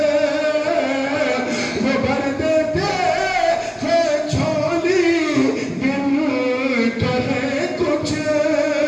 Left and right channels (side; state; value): both; identical; correlation 1.00